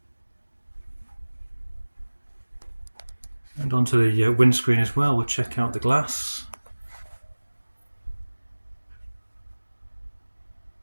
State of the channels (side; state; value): both; inverted; correlation -1.00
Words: And onto the windscreen as well. We'll check out the glass.